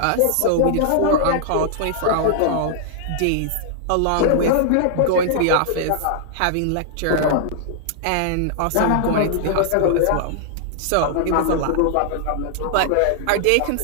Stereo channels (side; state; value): both; different; correlation -0.01